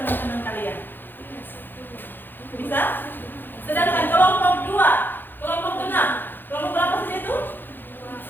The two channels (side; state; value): right; late; 0.095 ms